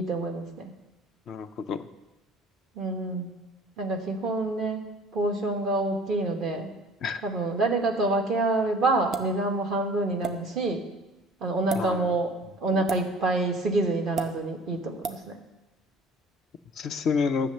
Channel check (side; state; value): both; normal; correlation 0.48